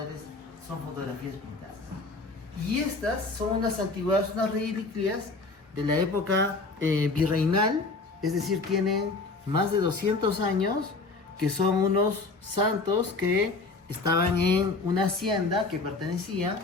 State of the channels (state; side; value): quieter; right; 3.6 dB